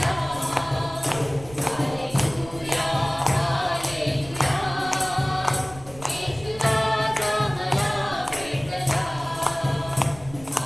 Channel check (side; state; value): right; noise; rumble, 18 dB below the sound